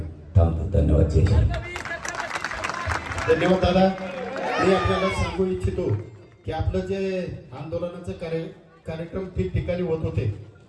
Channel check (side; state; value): both; identical; correlation 1.00